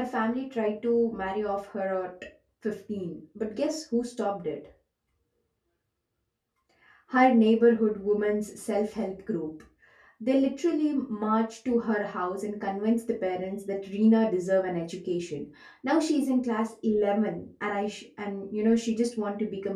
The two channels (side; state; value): both; identical; correlation 1.00